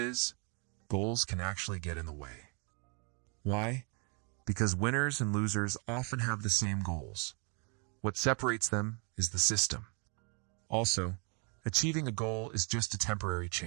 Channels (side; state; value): left; quieter; 35.1 dB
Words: goals can actually get in the way. Why? Because winners and losers often have the same goals. What separates them is the system. Also, achieving a goal is just a temporary